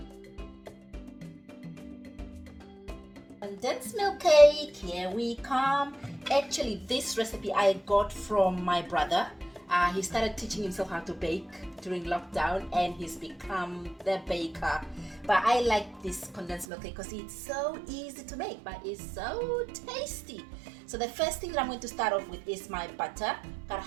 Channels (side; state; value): left; drops out; at 16.7 s